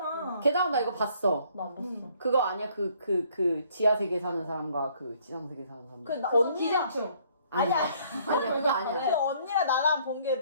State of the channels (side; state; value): both; inverted; correlation -0.62